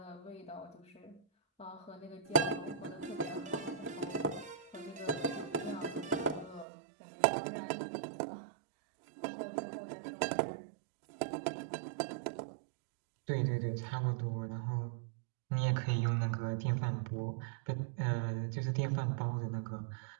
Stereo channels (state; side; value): drops out; left; at 6.7 s